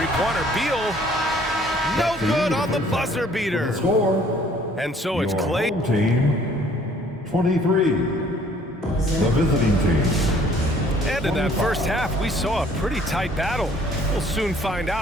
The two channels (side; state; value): both; normal; correlation 0.58